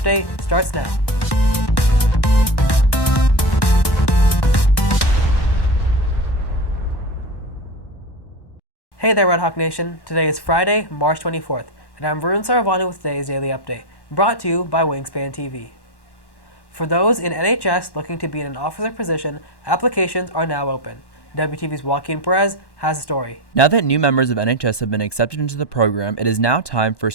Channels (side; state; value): right; late; 1.1 ms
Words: starts now. Hey there, Red Hawk Nation. Today is Friday, March 24th, and I'm Varun Saravanan with today's Daily Update, brought to you by Wingspan TV. For those in NHS looking to be in an officer position, applications are now open. WTV's Joaquin Perez has a story. Now that new members of NHS have been accepted into the program, it is now time for